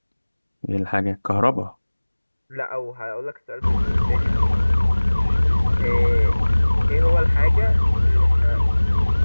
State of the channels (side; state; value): both; inverted; correlation -1.00